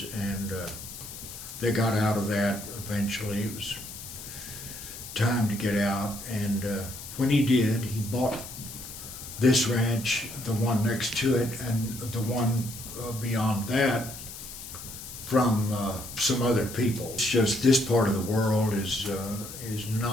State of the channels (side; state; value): left; noise; hiss, 12 dB below the sound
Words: and they got out of that eventually. It was time to get out, and when he did, he bought this ranch, the one next to it, and the one beyond that from some other people. It's just this part of the world is